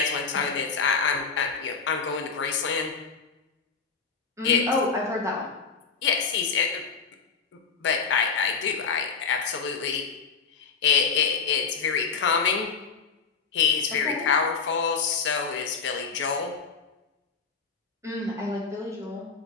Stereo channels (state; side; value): quieter; right; 5.4 dB